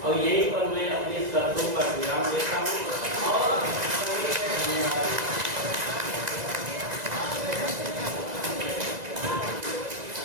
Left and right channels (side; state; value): left; late; 1.9 ms